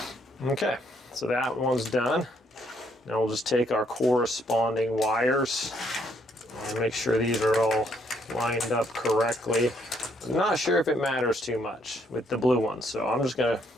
Okay. So that one's done. Now we'll just take our corresponding wires and make sure these are all lined up correctly. I'm not sure if it matters too much with the blue ones, so I'm just gonna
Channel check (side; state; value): both; normal; correlation 0.70